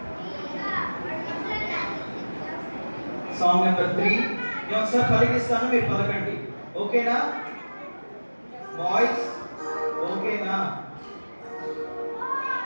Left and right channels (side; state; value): both; inverted; correlation -1.00